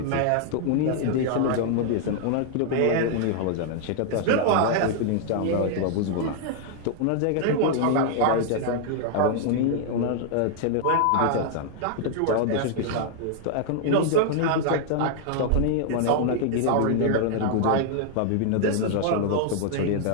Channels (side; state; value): both; different; correlation 0.00